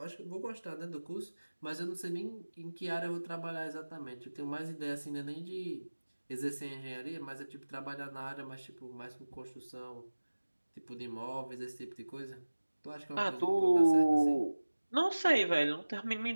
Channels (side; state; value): both; inverted; correlation -1.00